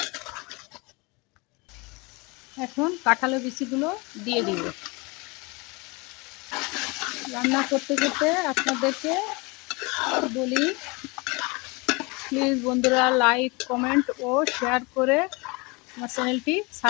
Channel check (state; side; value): quieter; right; 27.0 dB